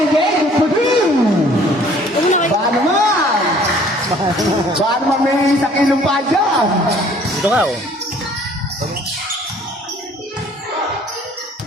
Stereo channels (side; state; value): both; normal; correlation 0.56